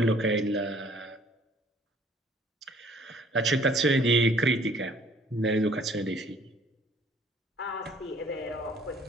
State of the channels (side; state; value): both; normal; correlation 0.58